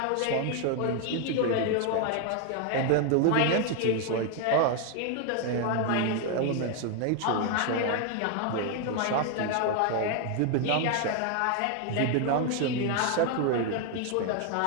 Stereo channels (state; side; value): different; both; correlation 0.01